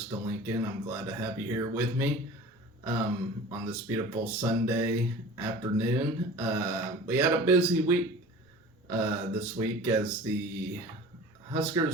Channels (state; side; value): normal; both; correlation 0.40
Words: to Lincoln. I'm glad to have you here with me on this beautiful Sunday afternoon. We had a busy week this week as the